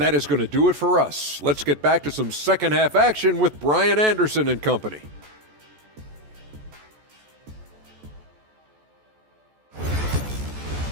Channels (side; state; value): left; late; 14 ms